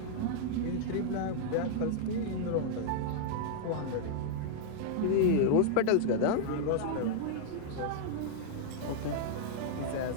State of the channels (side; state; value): both; different; correlation -0.01